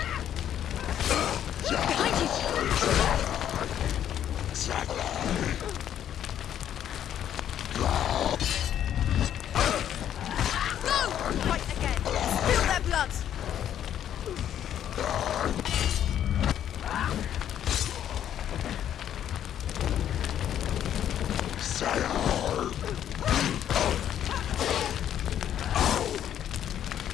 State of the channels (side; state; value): right; quieter; 10.3 dB